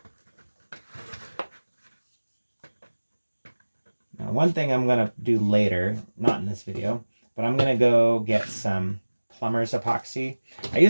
Now, one thing I'm going to do later, not in this video, but I'm going to go get some plumber's epoxy. I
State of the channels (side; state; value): both; inverted; correlation -1.00